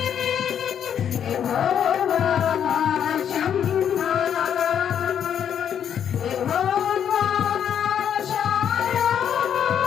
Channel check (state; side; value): quieter; right; 8.8 dB